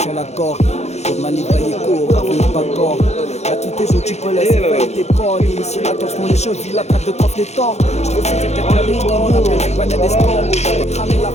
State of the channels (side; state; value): right; late; 0.32 ms